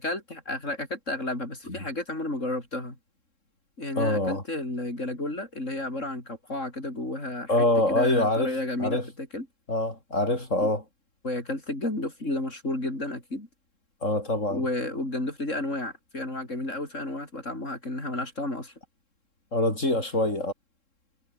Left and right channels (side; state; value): right; late; 3.7 ms